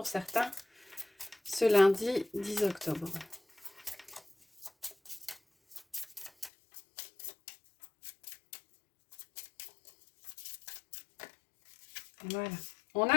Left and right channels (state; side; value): drops out; right; at 6.5 s